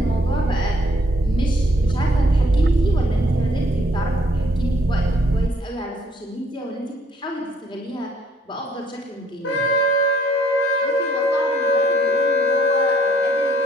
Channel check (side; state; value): both; normal; correlation 0.64